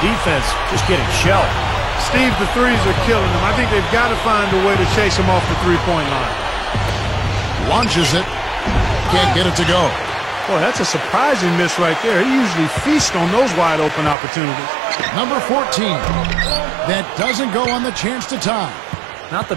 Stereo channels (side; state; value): left; drops out; at 14.2 s